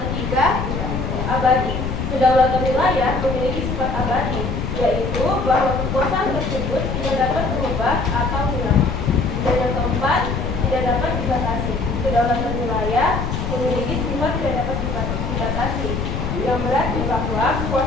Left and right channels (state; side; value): noise; left; rumble, 3 dB below the sound